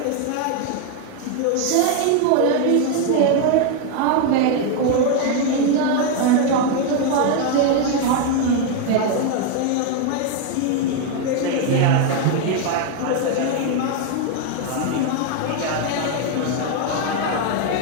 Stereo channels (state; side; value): different; both; correlation 0.01